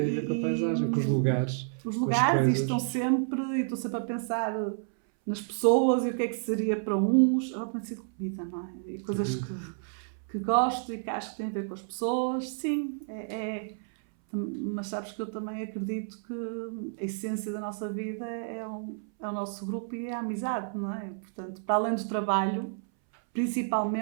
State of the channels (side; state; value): left; silent; 58 dB below the other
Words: a ver com a paisagem, com os lugares. Os lugares, e estou sempre a pensar nas pessoas e o que é que seria para uns. Tem sido comida, não é? E coisas que gosto e que acho que têm a ver com as pessoas. Sim, mas sabes que eu também acredito que a essência da nossa vida é o nosso grupo e é a amizade, não é? Portanto, para além do trabalho,